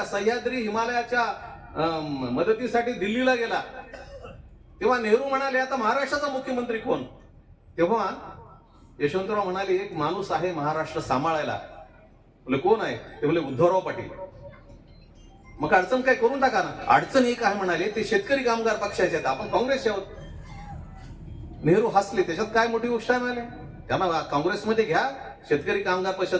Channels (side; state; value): both; identical; correlation 1.00